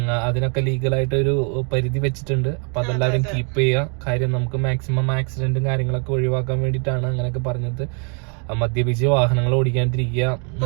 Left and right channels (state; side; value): quieter; left; 38.1 dB